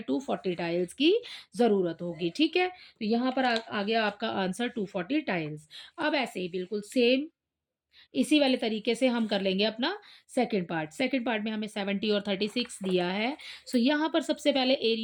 240 टाइल्स की ज़रूरत होगी, ठीक है? तो यहाँ पर आ गया आपका आंसर 240 टाइल्स। अब ऐसे ही बिल्कुल सेम इसी वाले तरीके से हम कर लेंगे अपना सेकंड पार्ट। सेकंड पार्ट में हमें 70 और 36 दिया है। सो यहाँ पर सबसे पहले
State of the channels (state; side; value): identical; both; correlation 1.00